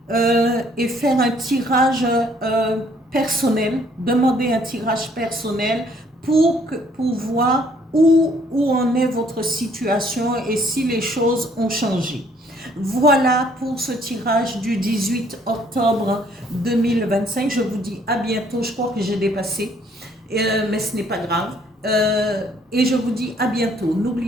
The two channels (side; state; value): both; normal; correlation 0.63